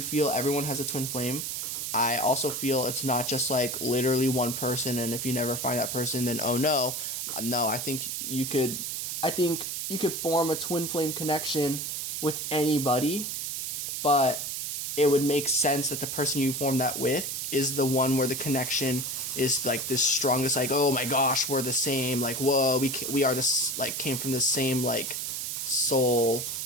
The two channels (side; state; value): right; noise; hiss, 3 dB below the sound